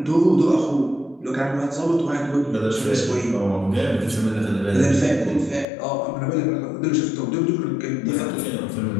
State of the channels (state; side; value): drops out; right; at 5.7 s